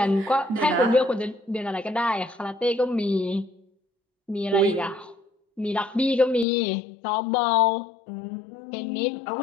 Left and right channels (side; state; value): right; drops out; at 6.5 s